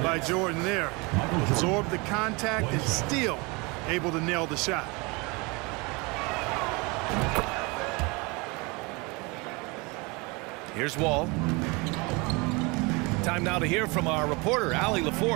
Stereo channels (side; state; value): left; quieter; 27.3 dB